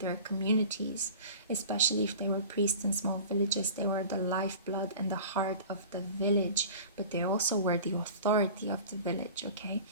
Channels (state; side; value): inverted; both; correlation -0.40